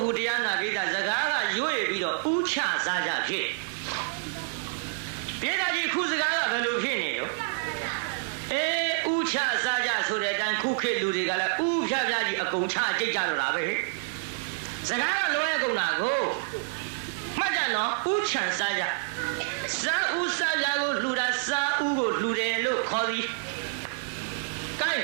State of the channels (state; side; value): silent; left; 57 dB below the other